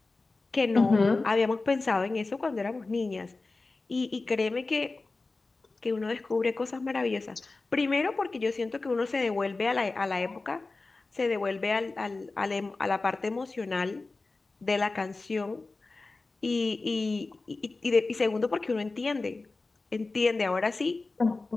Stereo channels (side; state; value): right; quieter; 3.5 dB